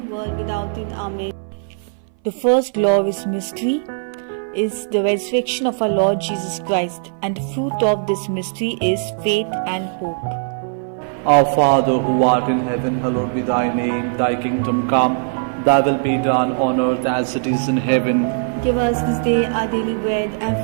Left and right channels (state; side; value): silent; left; 60 dB below the other